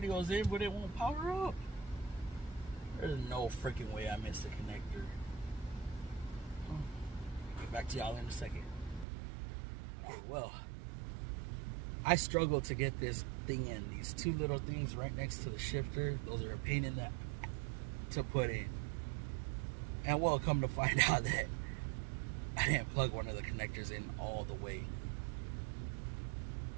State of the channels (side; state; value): left; drops out; at 9.1 s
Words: in, but it won't power up. There's no freaking way I missed the connector. Get back to y'all in a second. Oh, well, I struggled to get this thing in. These two little things right next to the shifter, those are a pain in the to put in. And well, come to find out that I didn't plug one of the connectors in all the way.